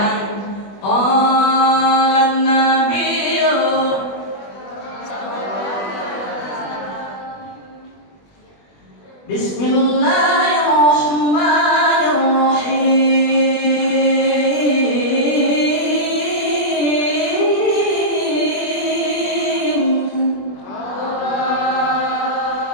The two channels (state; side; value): late; right; 20 ms